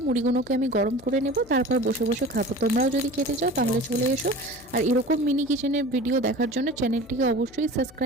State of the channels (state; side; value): noise; left; hum, 23 dB below the sound